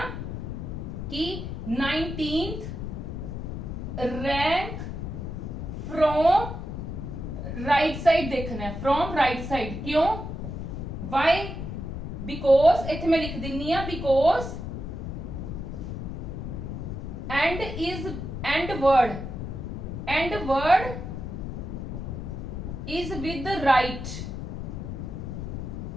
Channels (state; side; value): noise; left; rumble, 6 dB below the sound